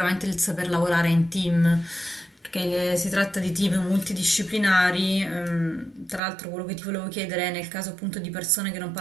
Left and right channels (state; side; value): drops out; left; at 6.2 s